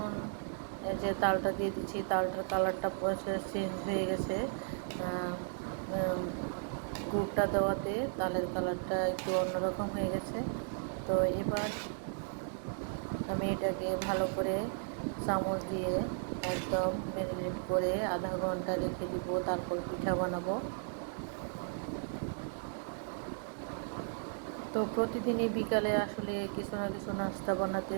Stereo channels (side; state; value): left; silent; digital silence